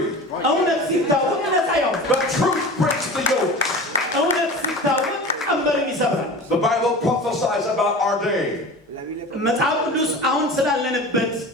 እውነት ሲታወቅ ነፃ ያወጣል። The truth breaks the yoke. እውነት ሲታወቅ ቀንበርን ይሰብራል። The Bible prophesies about our day. መጽሐፍ ቅዱስ አሁን ስላለንበት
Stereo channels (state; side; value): normal; both; correlation 0.35